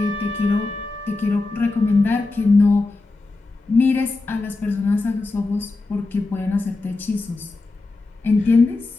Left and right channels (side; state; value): right; quieter; 3.4 dB